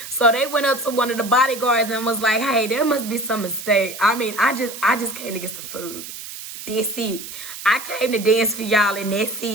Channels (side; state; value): right; noise; hiss, 11 dB below the sound